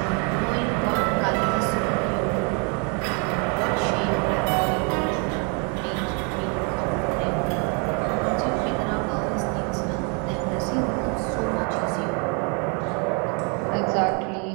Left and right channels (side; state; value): left; quieter; 35.7 dB